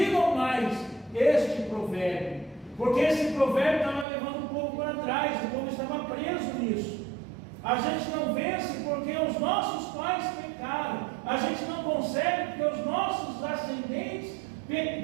mais este provérbio, porque esse provérbio estava levando o povo para trás, o povo estava preso nisso. A gente não vence porque os nossos pais pecaram, a gente não consegue porque os nossos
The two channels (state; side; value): drops out; left; at 4.0 s